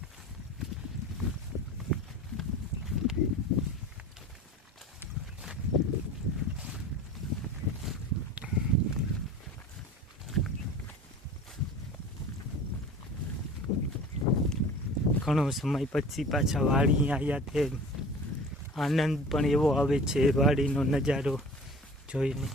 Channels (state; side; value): normal; both; correlation 0.41